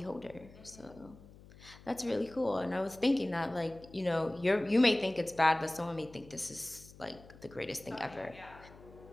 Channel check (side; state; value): left; noise; hum, 21 dB below the sound